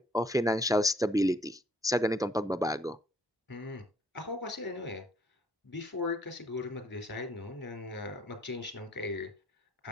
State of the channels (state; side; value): normal; both; correlation 0.64